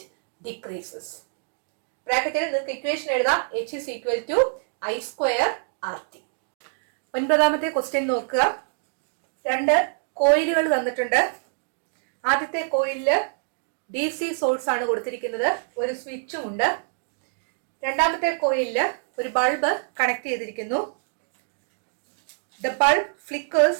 decreases. ബ്രാക്കറ്റിൽ നിങ്ങൾക്ക് equation എഴുതാം. H is equal to I square RT. ഒൻപതാമത്തെ question നോക്കുക. 2 കോയിലുകൾ തന്നിട്ടുണ്ട്. ആദ്യത്തെ കോയിലില് DC source ആണ് കൊടുത്തിരിക്കുന്നത്. ഒരു സ്വിച്ചും ഉണ്ട്. രണ്ടാമത്തെ കോയിലില് ഒരു ബൾബ് കണക്ട് ചെയ്തിരിക്കുന്നു. The bulb flickers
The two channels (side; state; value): left; silent; digital silence